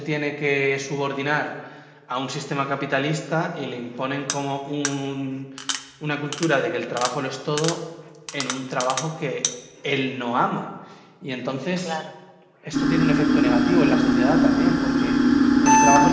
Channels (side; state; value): both; identical; correlation 1.00